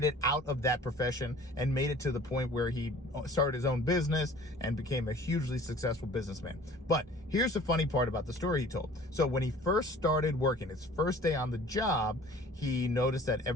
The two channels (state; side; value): normal; both; correlation 0.48